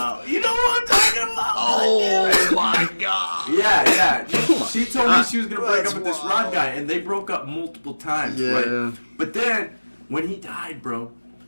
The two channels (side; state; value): both; inverted; correlation -1.00